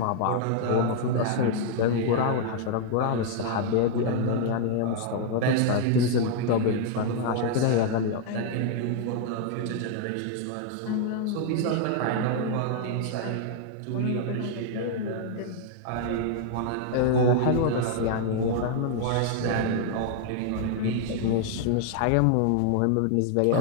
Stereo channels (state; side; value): different; both; correlation -0.01